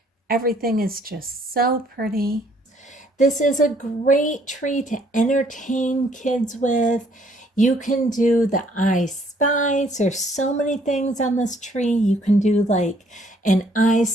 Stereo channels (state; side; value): normal; both; correlation 0.64